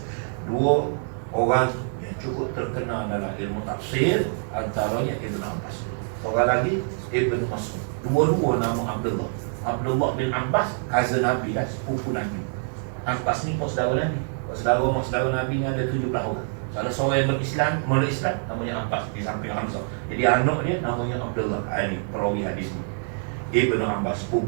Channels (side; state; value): left; silent; 61 dB below the other